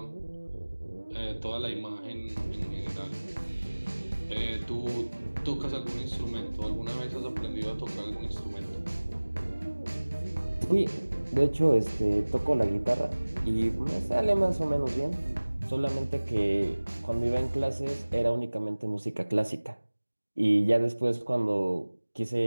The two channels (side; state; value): both; inverted; correlation -1.00